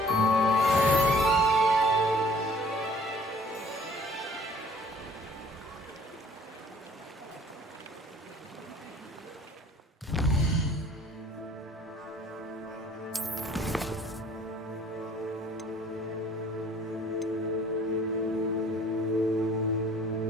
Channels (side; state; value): both; normal; correlation 0.54